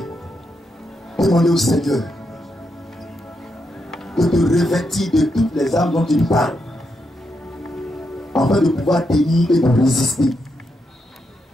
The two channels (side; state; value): both; normal; correlation 0.82